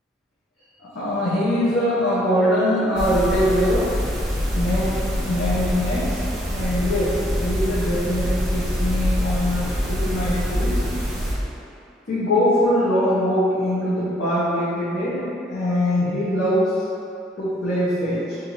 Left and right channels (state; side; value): normal; both; correlation 0.66